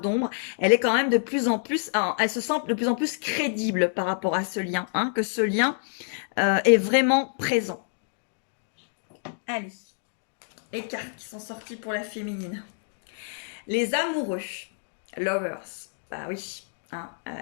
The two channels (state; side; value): silent; right; digital silence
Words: elle est quand même de plus en plus, elle se sent de plus en plus crédible par rapport à ce lien, hein, que ce lien est vraiment présent. Allez, les cartes qui sont sorties pour la féminine. Les amoureux, lovers, bah oui, hein,